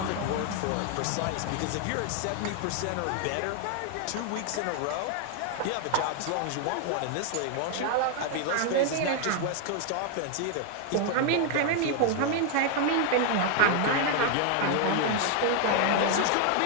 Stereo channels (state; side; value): different; both; correlation 0.00